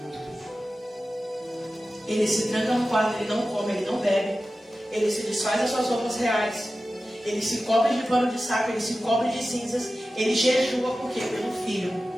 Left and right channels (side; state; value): both; normal; correlation 0.94